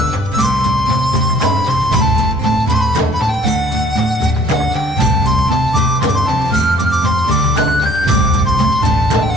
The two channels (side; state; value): both; normal; correlation 0.56